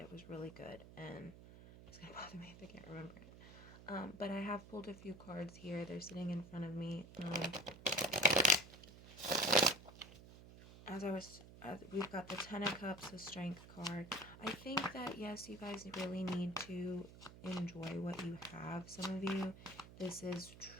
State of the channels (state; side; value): noise; right; hum, 17 dB below the sound